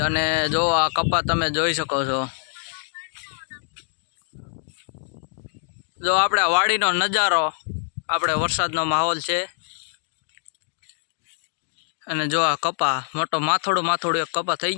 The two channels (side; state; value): right; silent; digital silence